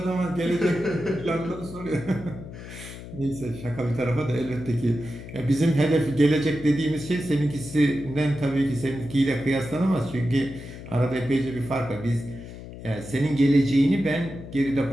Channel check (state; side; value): noise; left; hum, 13 dB below the sound